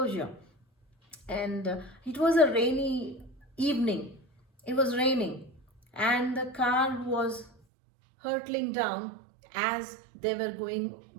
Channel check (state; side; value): drops out; left; at 7.5 s